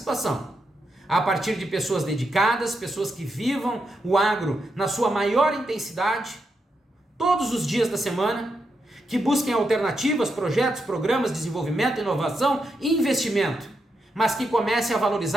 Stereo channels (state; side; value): normal; both; correlation 0.84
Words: a partir de pessoas dedicadas, pessoas que vivam o agro na sua maior intensidade, todos os dias da semana, que busquem alternativas, projetos, programas, desenvolvimento, inovação e investimento, mas que comecem a